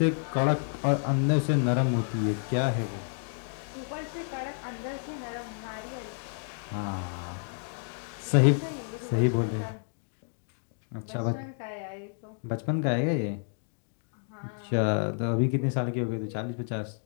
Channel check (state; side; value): silent; right; 58 dB below the other